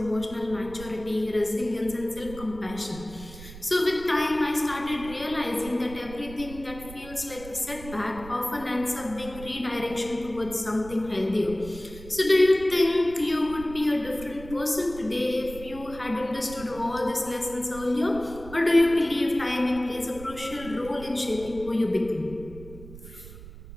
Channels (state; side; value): noise; right; rumble, 15 dB below the sound